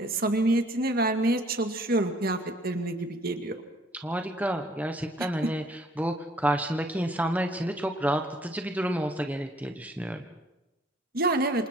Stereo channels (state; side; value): normal; both; correlation 0.59